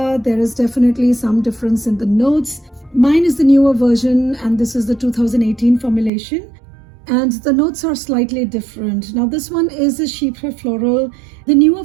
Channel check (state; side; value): drops out; left; at 6.1 s